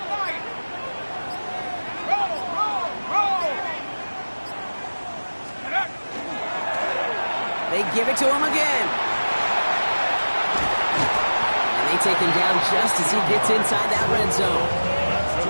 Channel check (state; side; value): inverted; both; correlation -1.00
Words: They give it to him again. And they take him down just as he gets inside that red zone.